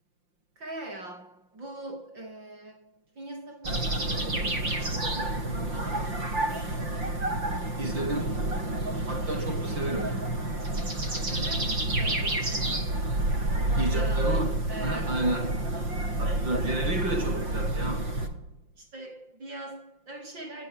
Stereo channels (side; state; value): left; late; 5.7 ms